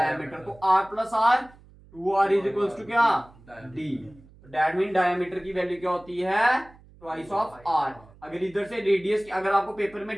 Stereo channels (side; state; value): right; noise; hum, 25 dB below the sound